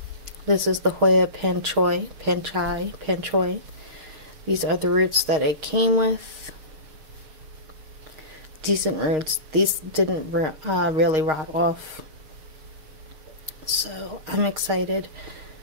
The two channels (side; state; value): left; late; 6.4 ms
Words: this is the Hoya Panchoii. These are the roots that it came with. Decent roots. These didn't really rot off, so I'm excited.